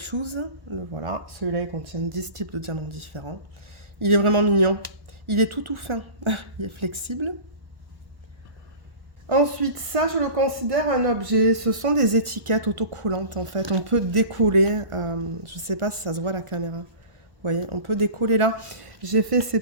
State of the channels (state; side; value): late; left; 1.1 ms